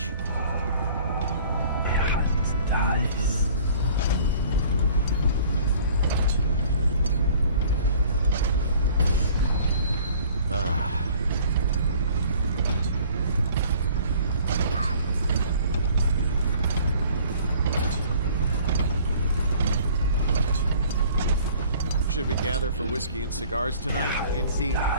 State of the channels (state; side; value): inverted; both; correlation -0.51